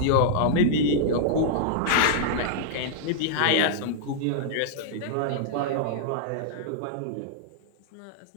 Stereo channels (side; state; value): both; different; correlation -0.02